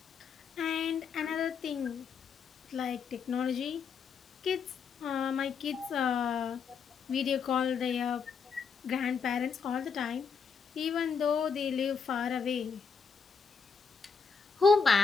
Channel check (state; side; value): quieter; right; 5.8 dB